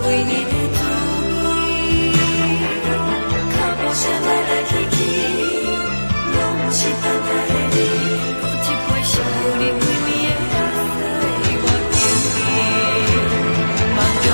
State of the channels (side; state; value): both; inverted; correlation -1.00